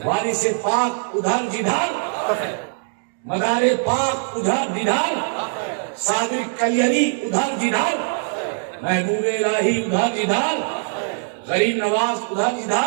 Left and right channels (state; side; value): silent; left; digital silence